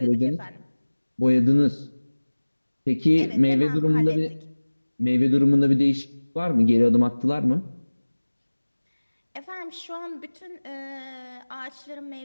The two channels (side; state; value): both; inverted; correlation -1.00